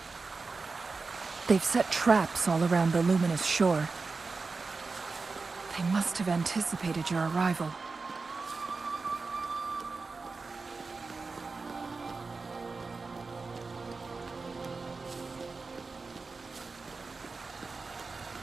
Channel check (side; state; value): left; quieter; 4.2 dB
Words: They've set traps all around the luminous shore. They must have anticipated your arrival.